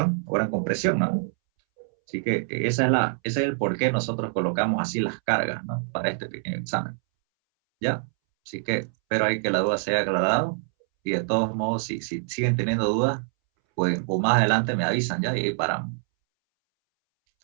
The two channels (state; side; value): silent; left; 62 dB below the other